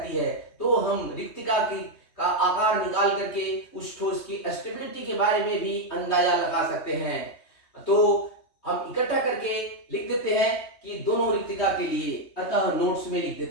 है। तो हम रिक्तिका का आकार निकाल करके उस ठोस की स्टेबिलिटी के बारे में भी अंदाजा लगा सकते हैं। तो हम इकट्ठा करके लिख देते हैं कि दोनों रिक्तिका के लिए, अतः नोट्स में लिख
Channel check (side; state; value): right; late; 3.2 ms